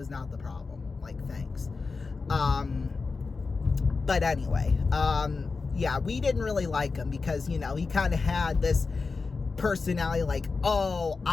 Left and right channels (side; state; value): right; quieter; 4.4 dB